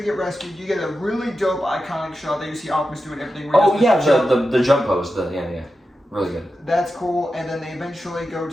get rescued. You get a really dope, iconic shot that you see Optimus doing everything. Oh yeah, the jump pose. Yeah. Really good. That's cool. And then they eventually go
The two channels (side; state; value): both; normal; correlation 0.91